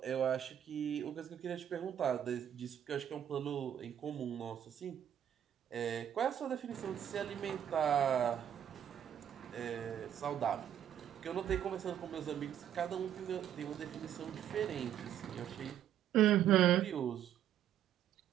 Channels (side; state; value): left; quieter; 10.2 dB